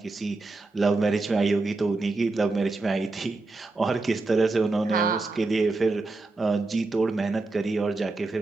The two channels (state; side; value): quieter; left; 3.4 dB